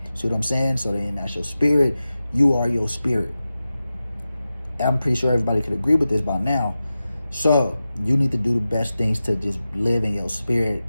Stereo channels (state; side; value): inverted; both; correlation -0.93